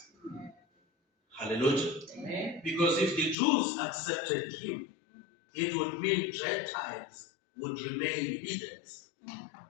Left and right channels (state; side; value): drops out; right; at 3.4 s